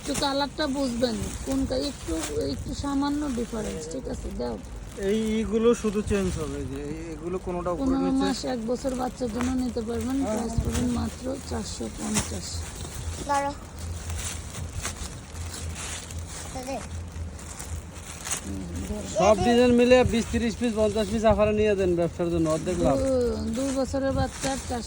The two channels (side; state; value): both; identical; correlation 1.00